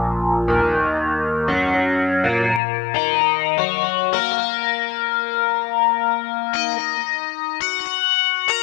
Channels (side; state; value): right; drops out; at 2.6 s